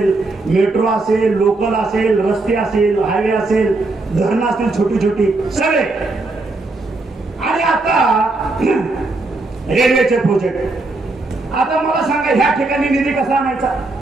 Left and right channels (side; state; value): left; quieter; 3.2 dB